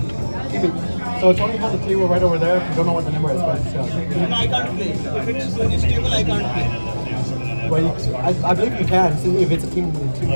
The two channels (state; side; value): inverted; both; correlation -1.00